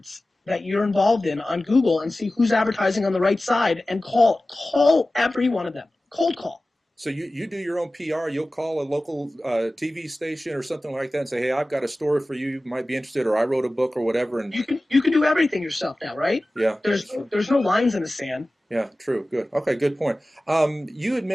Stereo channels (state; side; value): normal; both; correlation 0.96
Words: that you're involved in on Google and see who's advertising on the right side and call every one of them. Cold call. So you do your own PR. You'll call a local TV station or something like that and say, hey, I've got a story for you. You might be interested, or I wrote a book or whatever. And you can do everything yourself now, right? Yeah. There's no lines in the sand. Yeah, true. Good. Okay, good point. You had